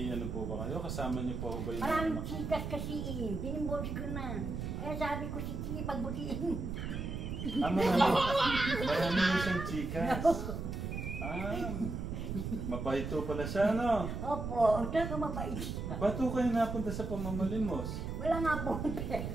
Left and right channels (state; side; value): noise; right; rumble, 4 dB below the sound